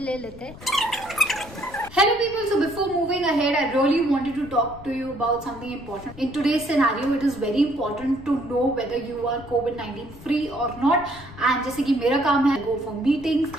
ले लेते हैं। Hello people, so before moving ahead, I really wanted to talk to you about something important. In today's scenario, it is very important to know whether you are COVID-19 free or not. And जैसे कि मेरा काम है go for meetings,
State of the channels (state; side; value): noise; left; rumble, 18 dB below the sound